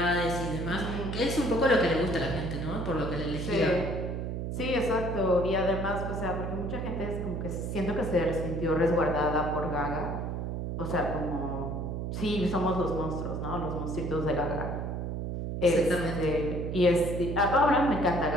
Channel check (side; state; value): right; noise; hum, 3 dB below the sound